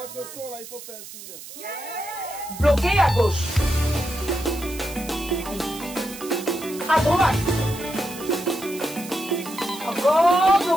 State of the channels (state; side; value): noise; right; hiss, 14 dB below the sound